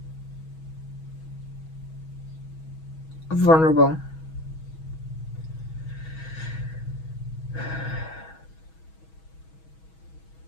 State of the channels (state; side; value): late; right; 6.2 ms